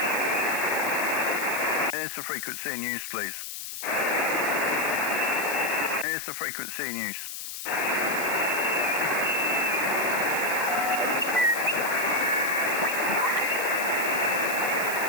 Here's the frequency in use, please. Here's the frequency in use.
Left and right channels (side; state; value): left; noise; hiss, 8 dB below the sound